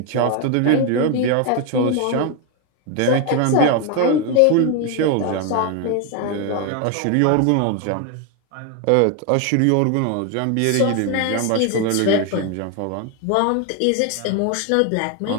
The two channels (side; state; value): both; different; correlation 0.01